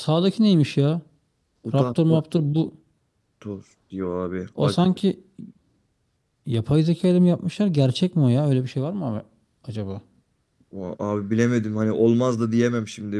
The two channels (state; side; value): identical; both; correlation 1.00